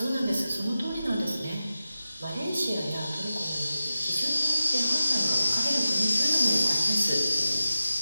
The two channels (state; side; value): inverted; both; correlation -0.93